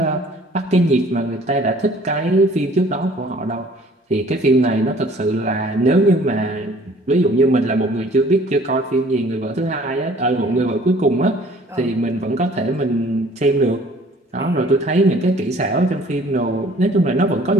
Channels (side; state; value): both; normal; correlation 0.54